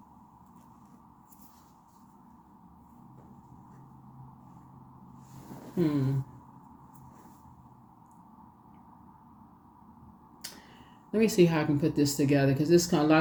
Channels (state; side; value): identical; both; correlation 1.00